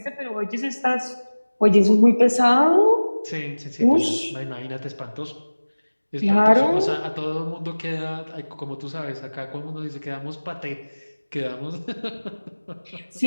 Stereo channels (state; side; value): inverted; both; correlation -1.00